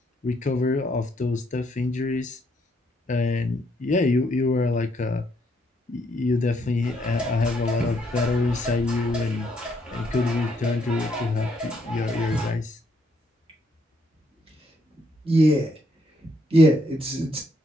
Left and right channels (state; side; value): normal; both; correlation 0.73